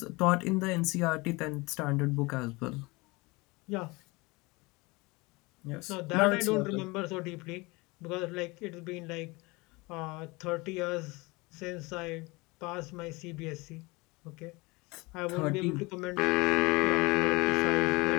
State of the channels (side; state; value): right; quieter; 24.5 dB